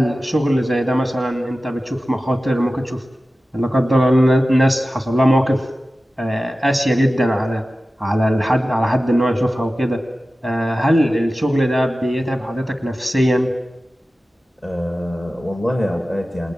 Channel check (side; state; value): both; normal; correlation 0.95